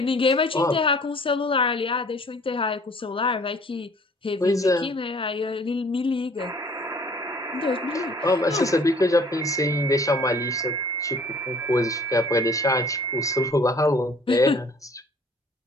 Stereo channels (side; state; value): both; normal; correlation 0.54